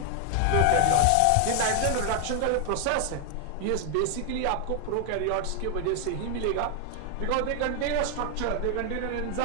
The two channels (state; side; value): different; both; correlation 0.00